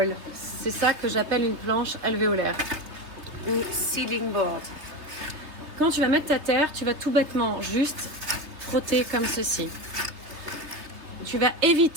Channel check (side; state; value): left; late; 3.3 ms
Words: C'est ça que j'appelle une planche alvéolaire ou seeding board. Quand tu vas mettre ta terre, tu vas tout bêtement juste frotter comme ceci. Tu vas